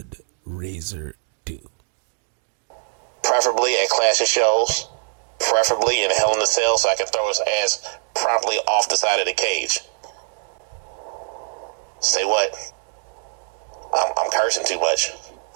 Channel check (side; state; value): left; silent; digital silence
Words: Razor do? Preferably at Clash of Shows, preferably in Hell in a Cell, so I can throw his ass promptly off the side of the cage. Say what? I'm cursing too much.